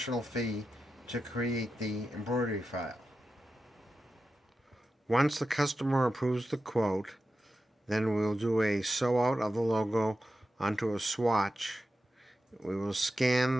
fee to create the embroidery file. Once the customer approves the quote, then we'll do a sew out of the logo onto a swatch. We will scan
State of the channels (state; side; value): normal; both; correlation 0.91